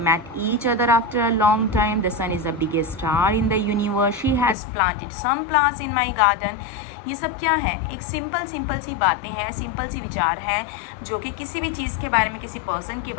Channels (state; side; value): drops out; right; at 4.5 s